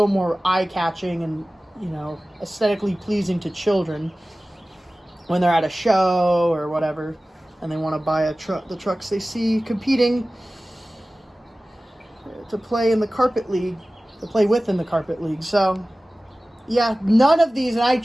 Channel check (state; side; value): normal; both; correlation 0.97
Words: more eye-catching and, you know, aesthetically pleasing to children when they're at a show or whatever, and they want to buy the trucks they see competing to play in the carpet league, to play with in the carpet league. So, yeah, none of these, and I